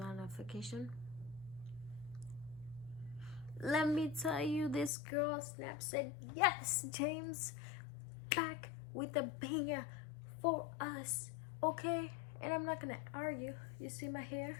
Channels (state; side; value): drops out; right; at 4.9 s